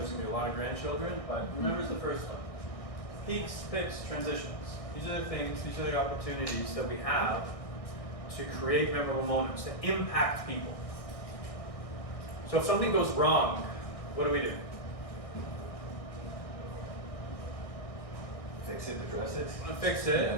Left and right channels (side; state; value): right; late; 1.6 ms